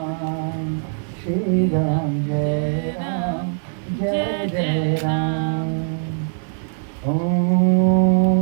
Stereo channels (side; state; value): left; silent; digital silence